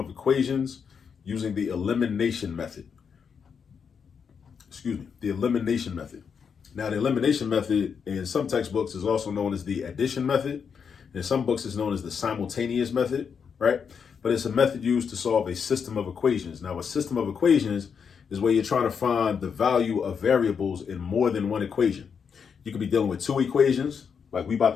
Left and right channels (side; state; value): right; quieter; 6.6 dB